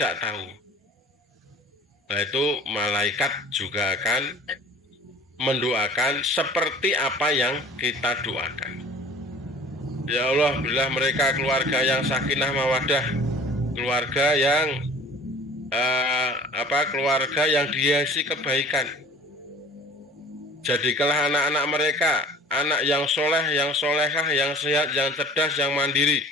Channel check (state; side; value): normal; both; correlation 0.46